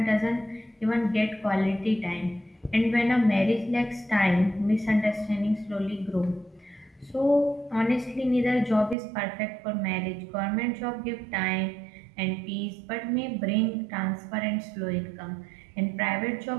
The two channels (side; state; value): left; drops out; at 9.0 s